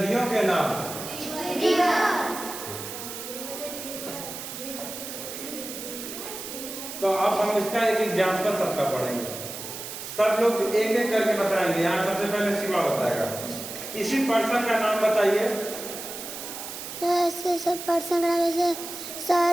के नाम, तो अब हम इसका एक एग्जाम्पल सबका पढ़ेंगे। सब लोग एक एक करके बताएंगे। यहाँ सबसे पहले शिवा बताएगा। किसी पर्सन का नाम बताइए। ऐसे सब पर्सन का नाम जैसे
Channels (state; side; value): noise; right; hiss, 9 dB below the sound